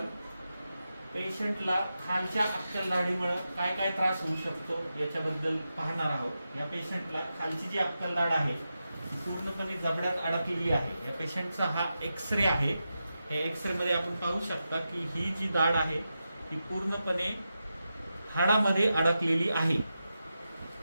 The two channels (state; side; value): inverted; both; correlation -0.90